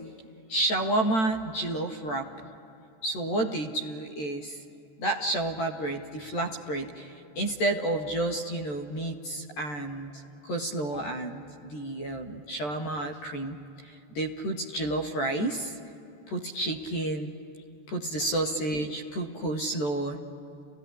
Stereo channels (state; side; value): late; right; 14 ms